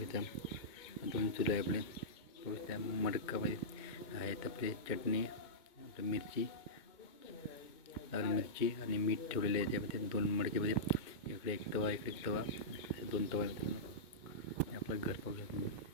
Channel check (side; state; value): right; late; 2.2 ms